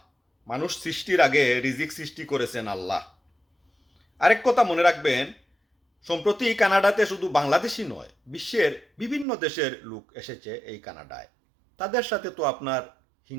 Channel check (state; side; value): drops out; left; at 9.2 s